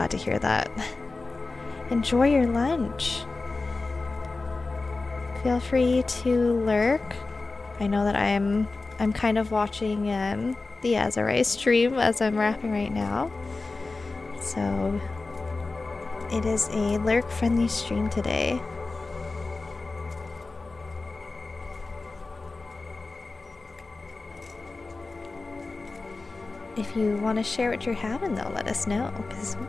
to hear that. Enjoy your lunch. Feel free to lurk. I know that I'm kind of watching the Azurai stream as I'm wrapping right now. So it is a lurk-friendly stream today. If you want to share what you're having, though, let us know, because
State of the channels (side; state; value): right; quieter; 3.6 dB